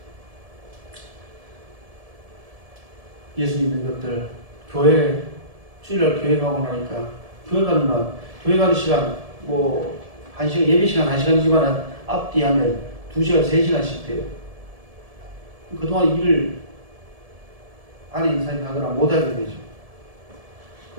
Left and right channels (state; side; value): late; left; 1.7 ms